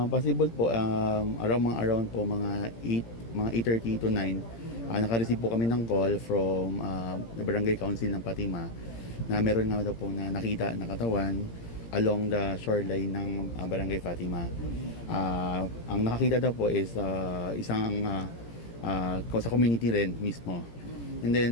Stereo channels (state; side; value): late; right; 17 ms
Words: possible po around po mga 8:30 to 9 naka-receive po kami ng call from the Barangay Council ng Fatima na meron nga daw po na nakita na katawan along the shoreline ng Barangay Fatima. Ang nakakita daw po is isang sa community rin mismo. And